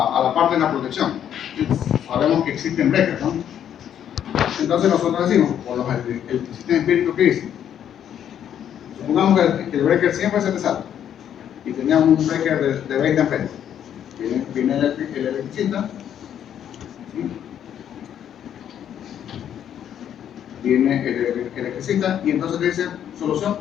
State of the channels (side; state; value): right; quieter; 9.6 dB